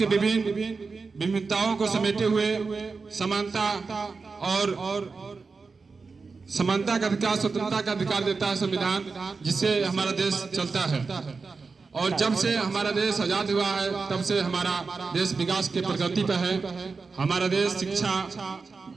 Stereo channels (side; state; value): left; quieter; 4.5 dB